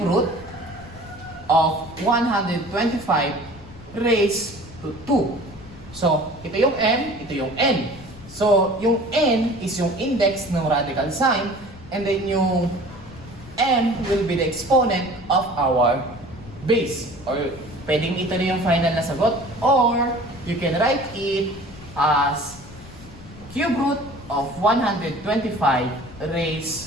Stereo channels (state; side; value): noise; left; rumble, 18 dB below the sound